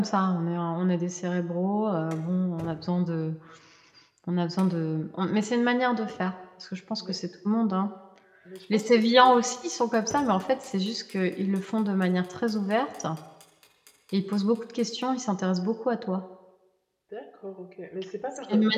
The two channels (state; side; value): identical; both; correlation 1.00